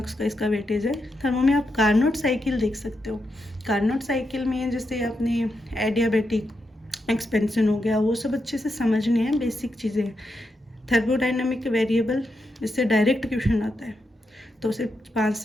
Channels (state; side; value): normal; both; correlation 0.85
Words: का इसका वेटेज है। थर्मो में आप कार्नोट साइकिल देख सकते हो। कार्नोट साइकिल में जैसे अपने एडियाबेटिक एक्सपेंशन हो गया, वो सब अच्छे से समझने हैं, बेसिक चीज़ें। थर्मोडाइनमिक वेरिएबल, इससे डायरेक्ट क्वेश्चन आता है, तो सिर्फ 5